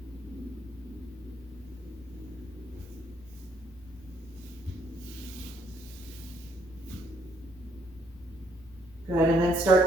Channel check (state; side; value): normal; both; correlation 0.70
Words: Good, and then